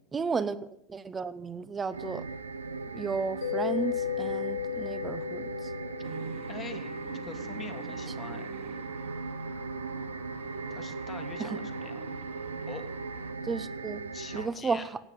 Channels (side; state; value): both; normal; correlation 0.04